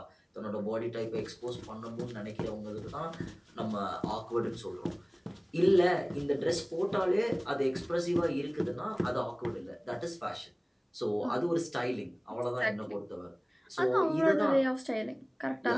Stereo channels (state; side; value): identical; both; correlation 1.00